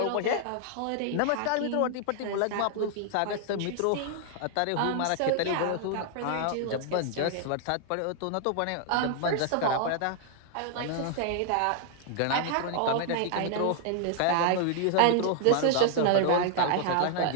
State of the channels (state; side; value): different; both; correlation 0.00